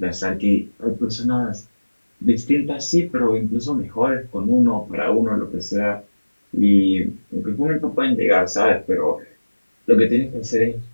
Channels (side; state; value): both; inverted; correlation -1.00